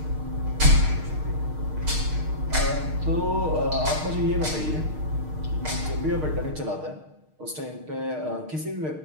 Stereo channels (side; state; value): left; late; 6.5 ms